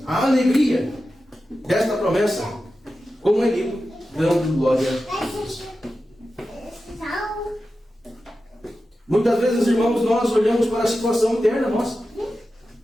a alegria desta promessa, como ele dando glória. Muitas vezes, irmãos, nós olhamos para a situação interna nossa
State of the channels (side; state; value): both; normal; correlation 0.92